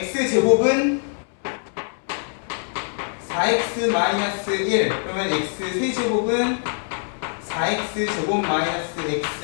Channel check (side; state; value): right; silent; 63 dB below the other